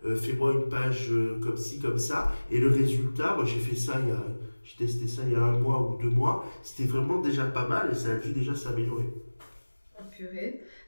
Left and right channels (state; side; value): inverted; both; correlation -1.00